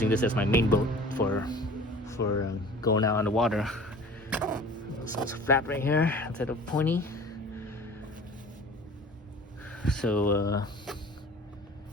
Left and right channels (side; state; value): both; normal; correlation 0.44